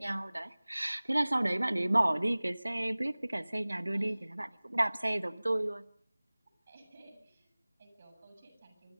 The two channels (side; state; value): both; inverted; correlation -1.00